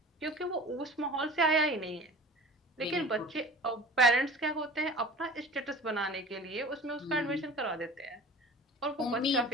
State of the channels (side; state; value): both; normal; correlation 0.40